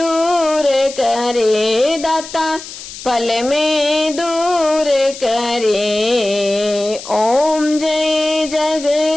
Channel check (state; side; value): noise; left; hiss, 13 dB below the sound